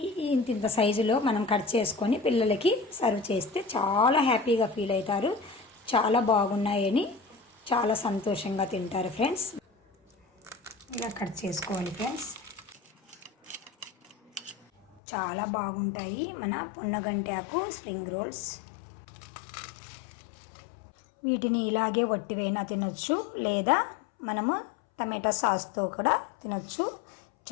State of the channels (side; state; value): right; drops out; at 15.0 s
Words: ఇంత సైజులో మనం కట్ చేసుకొని పిల్లలకి సర్వ్ చేస్తే చాలా హ్యాపీగా ఫీల్ అవుతారు. చాలా బాగున్నాయని చాలా సంతోషంగా తింటారు ఫ్రెండ్స్. ఇలా కట్ చేసుకోవాలి ఫ్రెండ్స్. చాలా బాగుంటాయి మన పొన్నగంటి ఆకు స్ప్రింగ్ రోల్స్. వీటిని ఇలాగే వట్టివైనా తినొచ్చు, లేదా మనము టమాటా సాస్తో కూడా తినొచ్చు.